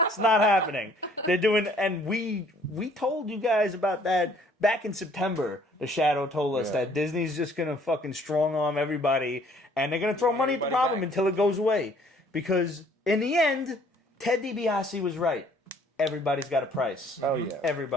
It's not happening. They're doing, and we told you guys about that back in September. The Shadow told us Yeah. that Disney's just gonna fucking strong arm everybody, and they're gonna throw money at the Everybody problem back. until it goes away. Because in the end, Ted DiBiase was right. Everybody's got a price. Oh, yeah.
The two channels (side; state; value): both; normal; correlation 0.59